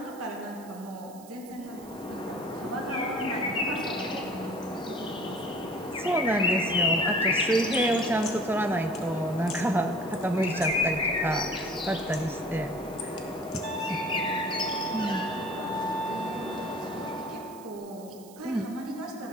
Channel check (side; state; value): right; noise; hiss, 22 dB below the sound